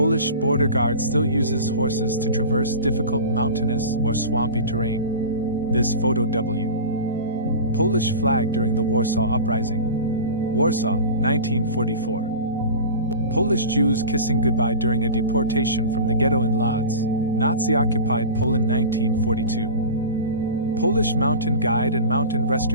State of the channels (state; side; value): inverted; both; correlation -0.32